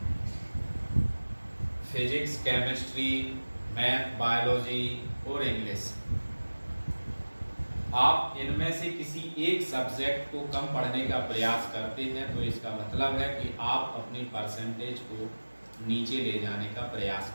फिजिक्स, केमिस्ट्री, मैथ, बायोलॉजी और इंग्लिश आप इनमें से किसी एक सब्जेक्ट को कम पढ़ने का प्रयास करते हैं तो इसका मतलब है कि आप अपनी परसेंटेज को नीचे ले जाने का प्रयास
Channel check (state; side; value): inverted; both; correlation -1.00